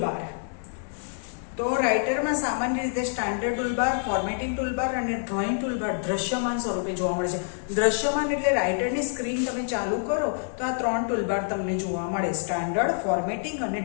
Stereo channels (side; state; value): right; silent; digital silence